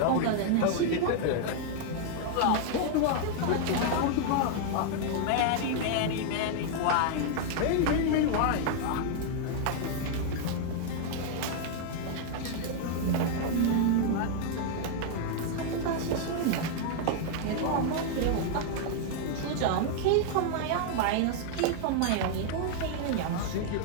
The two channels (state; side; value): different; both; correlation 0.00